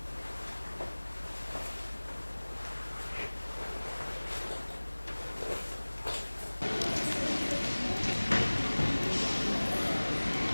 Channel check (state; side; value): inverted; both; correlation -1.00